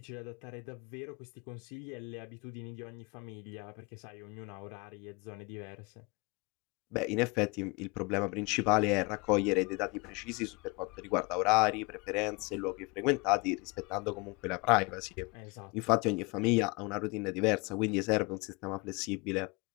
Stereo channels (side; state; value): right; quieter; 27.6 dB